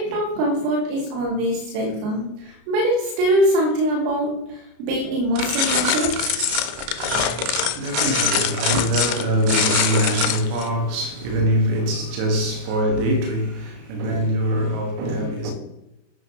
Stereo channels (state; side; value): late; left; 33 ms